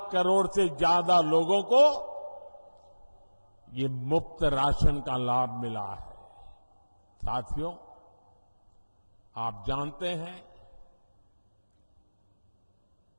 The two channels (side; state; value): both; inverted; correlation -1.00